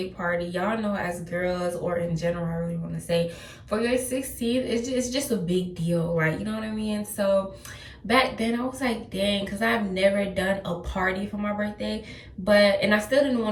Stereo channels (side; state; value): both; identical; correlation 1.00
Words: party. Y'all know, as girls, or in general, I really want to say, for your 16th, it's just a big deal, like, you know what I mean? So back then I was like, dang, because I've never done a party for my birthday, and I still didn't